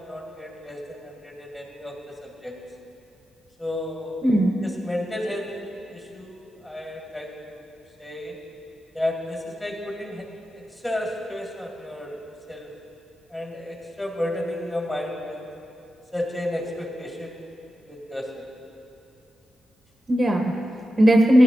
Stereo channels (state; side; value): normal; both; correlation 0.90